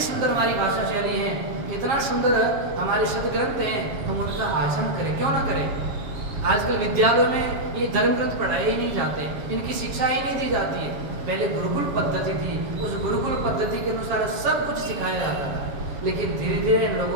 सुंदर हमारी भाषा शैली है, इतना सुंदर हमारे शब्द ग्रंथ हैं, हम उनका आचरण करें, क्यों ना करें? आजकल विद्यालयों में ये धर्म ग्रंथ पढ़ाए ही नहीं जाते, इनकी शिक्षा ही नहीं दी जाती है। पहले गुरुकुल पद्धति थी, उस गुरुकुल पद्धति के अनुसार सब कुछ सिखाया जाता था, लेकिन धीरे धीरे इन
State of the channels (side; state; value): left; late; 7.3 ms